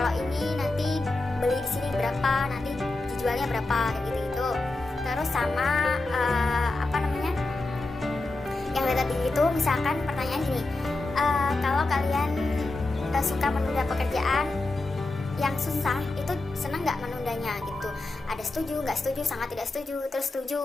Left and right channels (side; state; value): right; quieter; 3.1 dB